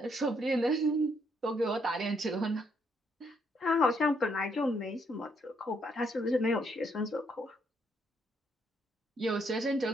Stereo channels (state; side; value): normal; both; correlation 0.72